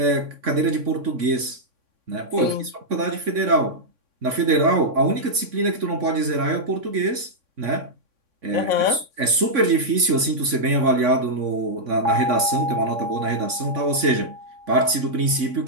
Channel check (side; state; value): left; late; 3.6 ms